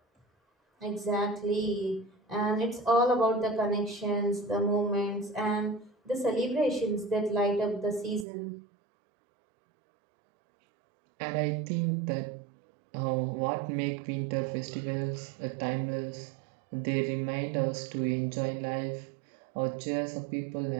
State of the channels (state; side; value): drops out; left; at 8.2 s